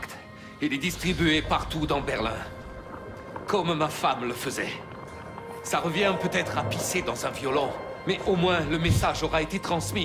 et les distribuer partout dans Berlin. Comme ma femme le faisait. Ça revient peut-être à pisser dans un violon, mais au moins le message aura été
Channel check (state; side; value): identical; both; correlation 1.00